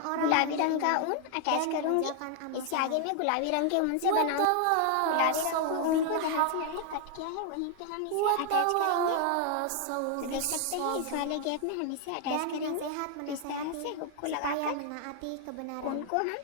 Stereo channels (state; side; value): different; both; correlation 0.00